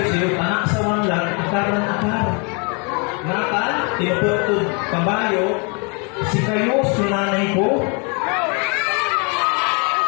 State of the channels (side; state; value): right; quieter; 34.3 dB